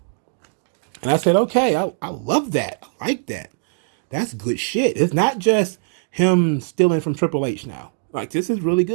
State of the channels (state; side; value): silent; left; digital silence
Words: And I said, okay, I love that. I like that. That's good shit. It's not just him stealing from Triple H now. Like, this is really